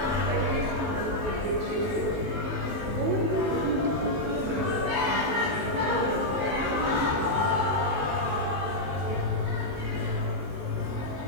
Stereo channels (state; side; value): late; left; 19 ms